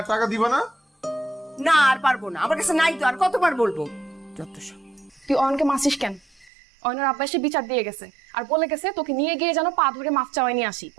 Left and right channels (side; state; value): left; drops out; at 6.5 s